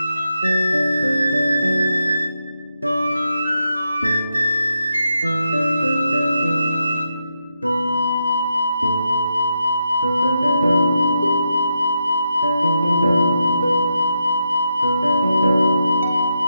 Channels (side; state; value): both; inverted; correlation -0.83